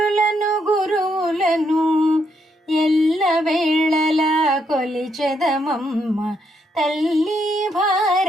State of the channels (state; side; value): normal; both; correlation 0.76